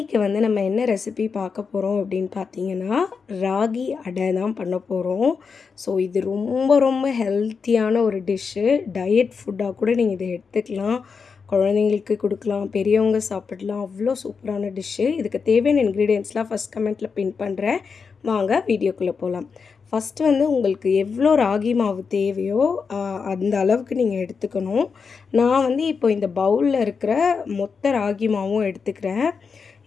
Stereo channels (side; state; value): right; quieter; 5.5 dB